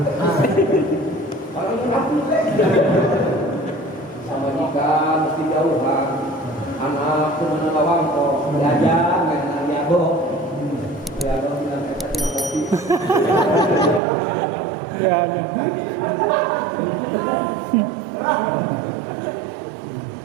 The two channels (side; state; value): left; drops out; at 14.0 s